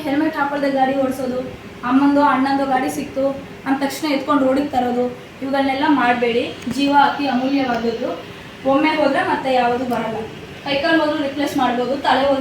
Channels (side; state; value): both; identical; correlation 1.00